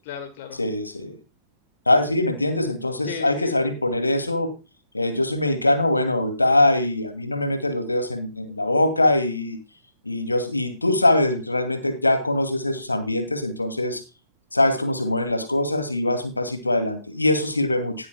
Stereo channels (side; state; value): both; inverted; correlation -0.82